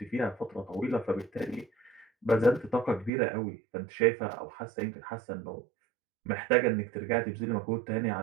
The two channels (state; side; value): drops out; left; at 3.1 s